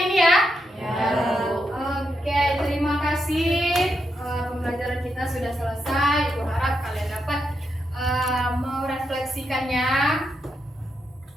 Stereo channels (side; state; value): both; normal; correlation 0.83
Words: ini ya? Oke, terima kasih. Pembelajaran kita sudah selesai. Ibu harap kalian dapat merefleksikannya